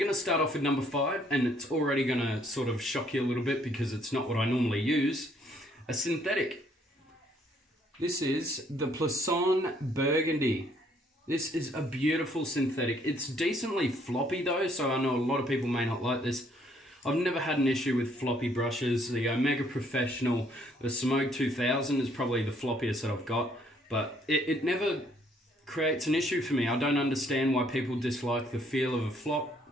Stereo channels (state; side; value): normal; both; correlation 0.66